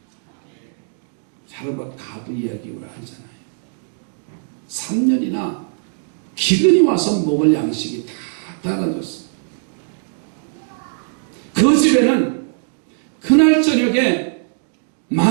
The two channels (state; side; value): silent; left; digital silence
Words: 자르밧 가부 이야기 우리가 하잖아요. 3년이나 기근이 와서 먹을 양식이 다 떨어졌어. 그 집에는 그날 저녁에